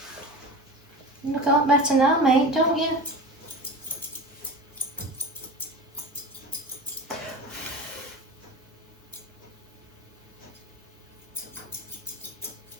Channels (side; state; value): both; normal; correlation 0.31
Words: You look a lot better now, mate, don't you?